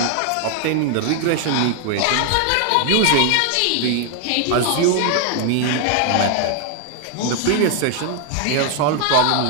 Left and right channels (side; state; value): both; different; correlation 0.00